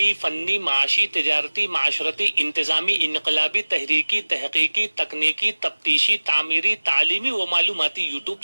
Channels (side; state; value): both; inverted; correlation -1.00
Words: फन्नी, माशी, तिजारती, माशरती, इंतजामी, इनकलाबी, तहरीकी, तहकीकी, तकनीकी, तफ्तीशी, तामीरी, तालीमी व मालूमाती यूट्यूब